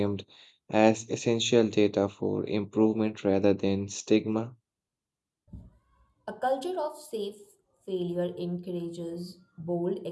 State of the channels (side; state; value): both; identical; correlation 1.00